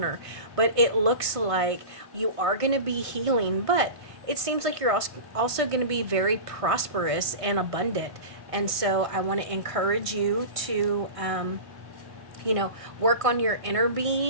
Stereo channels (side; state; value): left; late; 1.5 ms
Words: But it looks like you are going to be healing, but it seems like you're also going to be very prosperous and abundant. And so I want to encourage you to work on your inner